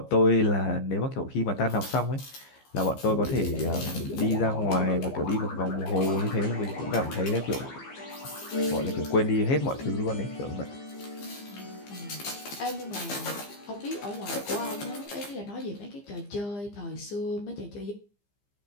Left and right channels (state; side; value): late; right; 15 ms